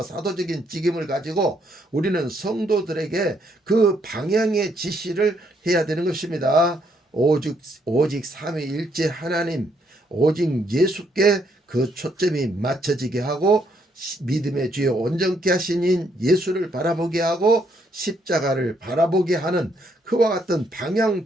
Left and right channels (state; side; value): normal; both; correlation 0.72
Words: 사도적인 직임을 가지고 우리는 성도들에게 그 방향의 지시를 해야 되는 것입니다. 오직 삼위일체 하나님 오직 예수께 그 초점이 맞춰지게 하고 믿음의 주여 온전케 하신 예수를 바라보게 하고 십자가를 바라보게 하는 그와 같은 방향